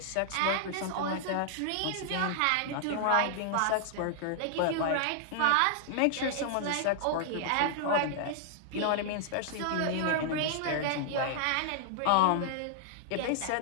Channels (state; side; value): different; both; correlation -0.01